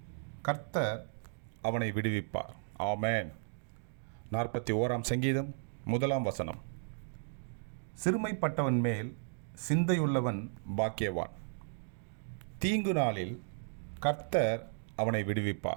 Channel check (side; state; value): left; silent; digital silence